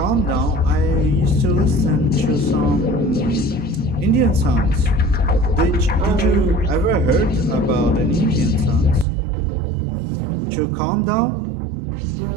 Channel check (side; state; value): left; drops out; at 9.1 s